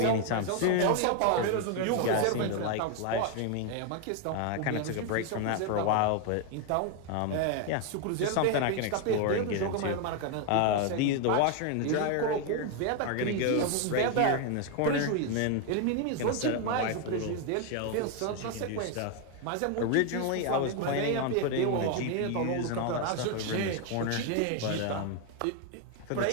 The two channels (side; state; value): both; different; correlation 0.01